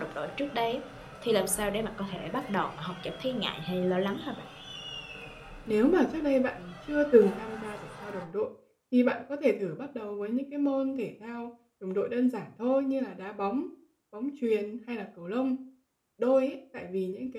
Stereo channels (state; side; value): identical; both; correlation 1.00